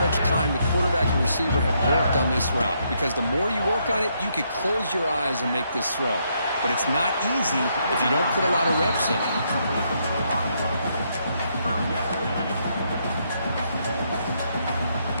much time the quarterback and receiver have worked on this route. Because the more you work on it, you could close your eyes and make this throw. But it's not easy if you don't put a lot of reps in.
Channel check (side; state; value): both; inverted; correlation -0.75